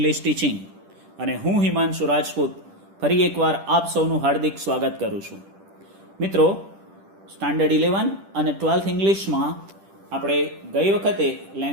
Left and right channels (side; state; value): left; late; 10 ms